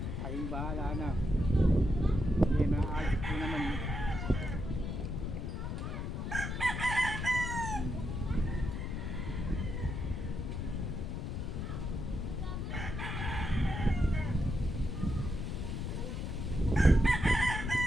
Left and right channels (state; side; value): noise; left; rumble, 3 dB below the sound